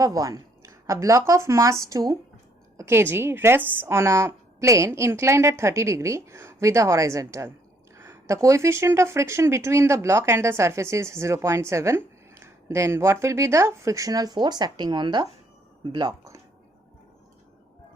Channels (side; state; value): both; normal; correlation 0.68